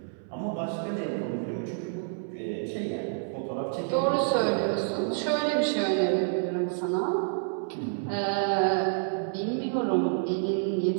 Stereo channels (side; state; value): left; silent; 59 dB below the other